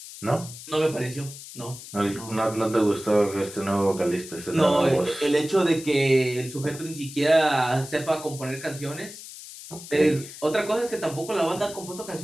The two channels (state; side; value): noise; left; hiss, 14 dB below the sound